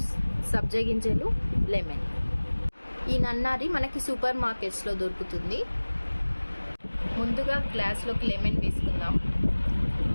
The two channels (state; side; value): inverted; both; correlation -1.00